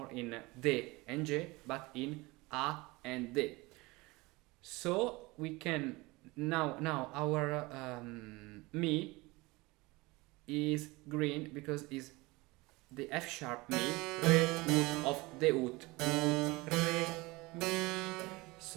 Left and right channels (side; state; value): left; quieter; 23.0 dB